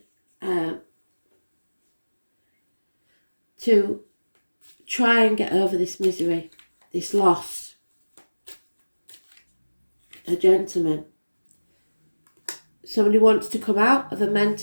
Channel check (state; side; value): inverted; both; correlation -1.00